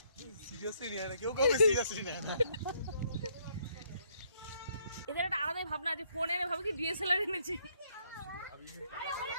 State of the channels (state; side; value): inverted; both; correlation -0.70